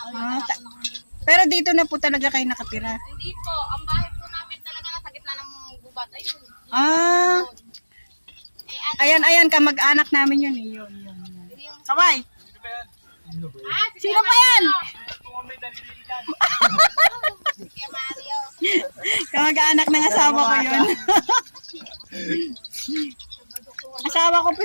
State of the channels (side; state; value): both; inverted; correlation -1.00